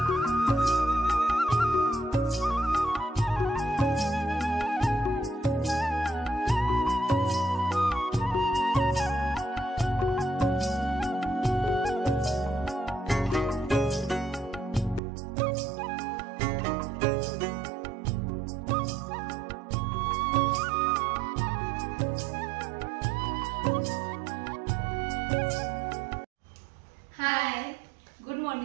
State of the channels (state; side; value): drops out; left; at 15.0 s